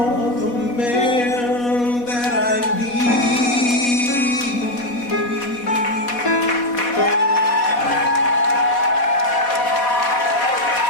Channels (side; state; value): right; late; 4.1 ms